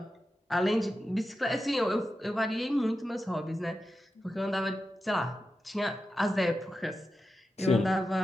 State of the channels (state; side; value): normal; both; correlation 0.91